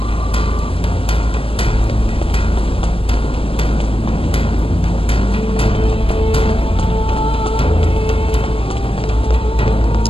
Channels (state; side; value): late; right; 0.27 ms